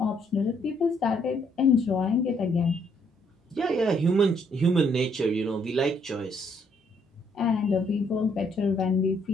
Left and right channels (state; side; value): normal; both; correlation 0.69